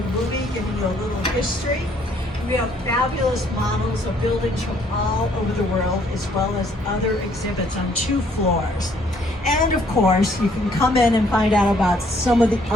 movie giving you a little history. We have fabulous models of buildings from all over the world, as well as other exhibits on 2 floors. And of course, you can come in and find out about some of the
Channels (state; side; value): normal; both; correlation 0.64